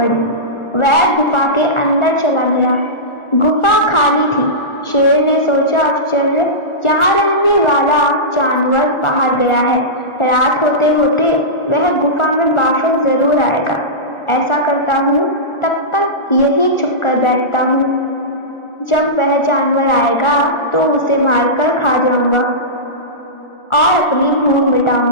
वह गुफा के अंदर चला गया। गुफा खाली थी। शेर ने सोचा, आश्चर्य, यहाँ रहने वाला जानवर बाहर गया है। रात होते होते वह गुफा में वापस जरूर आएगा। ऐसा करता हूँ, तब तक यही छुप कर बैठता हूँ। जब वह जानवर आएगा तो उसे मारकर खा जाऊंगा और अपनी भूख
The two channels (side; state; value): right; late; 1.4 ms